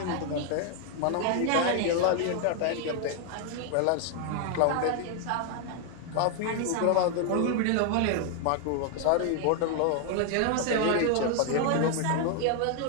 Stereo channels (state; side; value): different; both; correlation 0.00